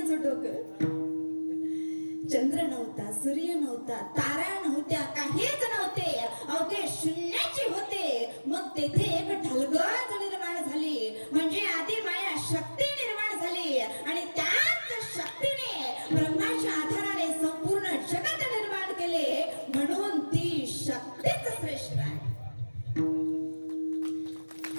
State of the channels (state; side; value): inverted; both; correlation -1.00